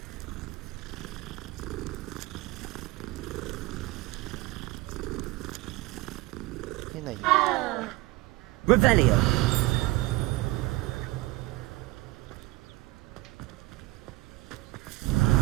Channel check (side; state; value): left; quieter; 19.9 dB